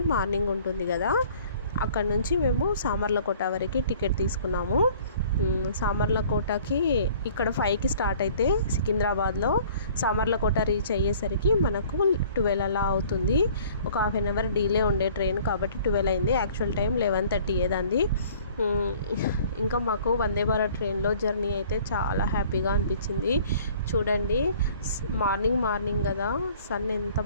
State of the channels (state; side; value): inverted; both; correlation -0.52